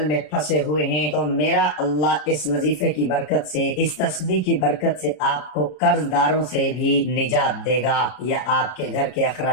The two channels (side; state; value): right; late; 33 ms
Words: میں پھنسے ہوئے ہیں، تو میرا اللہ اس وظیفے کی برکت سے، اس تسبیح کی برکت سے آپ کو قرض داروں سے بھی نجات دے گا. یا آپ کے گھر کے